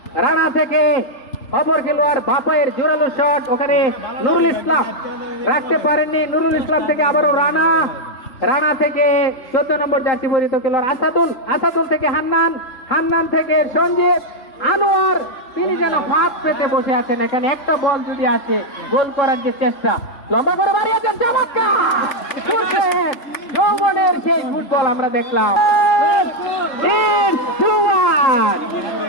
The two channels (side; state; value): right; late; 3.9 ms